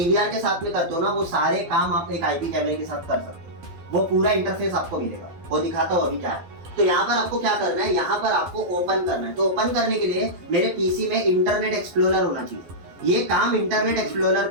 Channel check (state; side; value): late; left; 12 ms